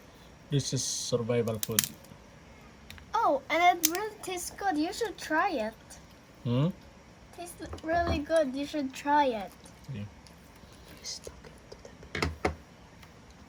This is survival food. Oh, and it really tastes good. You should try it. Tastes really good. You should try it. Yeah.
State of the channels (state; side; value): identical; both; correlation 1.00